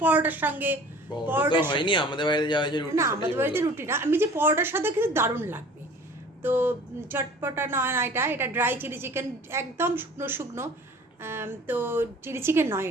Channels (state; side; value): normal; both; correlation 0.46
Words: পরোটার সঙ্গে, পরোটা তো হয়নি, আমাদের বাড়িতে যাওয়া হয়েছে রুটি। না আমাদের বাড়িতে রুটি না, আমি যে পরোটার সাথে কিন্তু দারুণ লাগবে। তো চটপটা নয় না, এটা ড্রাই চিলি চিকেন, একদম শুকনো শুকনো। তো চিলি চিকেন নয়,